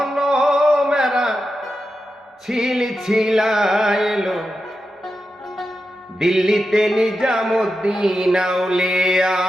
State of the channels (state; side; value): normal; both; correlation 0.89